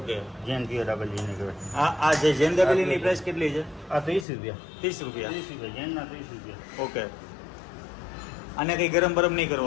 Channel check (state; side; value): drops out; right; at 4.2 s